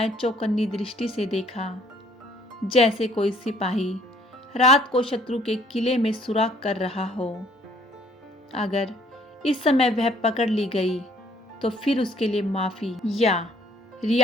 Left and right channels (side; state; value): both; normal; correlation 0.60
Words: चौकन्नी दृष्टि से देखा, जैसे कोई सिपाही रात को शत्रु के किले में सुराग कर रहा हो। अगर इस समय वह पकड़ ली गई तो फिर उसके लिए माफी या